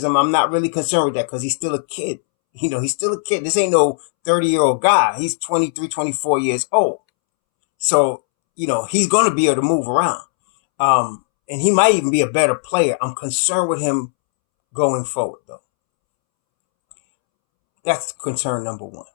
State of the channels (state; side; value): silent; right; 67 dB below the other